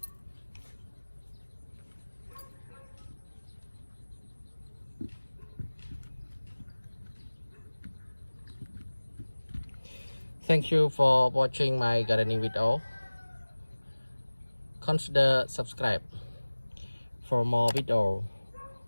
Thank you for watching my gardening video. Consider subscribe for more video.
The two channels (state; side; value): inverted; both; correlation -1.00